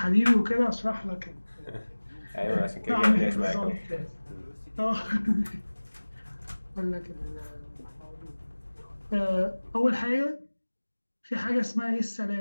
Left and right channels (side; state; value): both; inverted; correlation -1.00